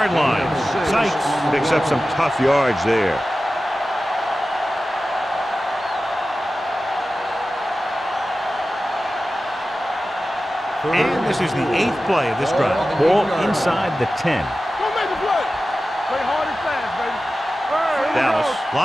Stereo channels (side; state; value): both; normal; correlation 0.94